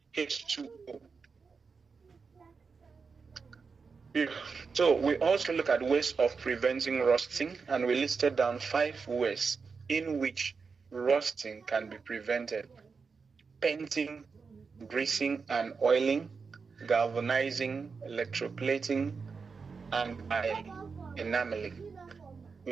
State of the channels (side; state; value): left; quieter; 5.1 dB